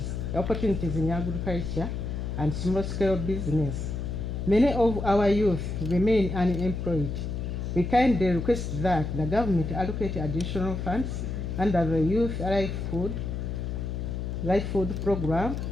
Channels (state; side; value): noise; left; hum, 4 dB below the sound